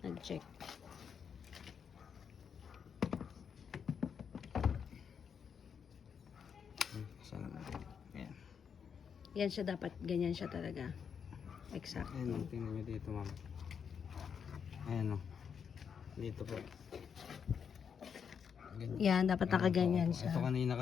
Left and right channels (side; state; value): right; quieter; 7.0 dB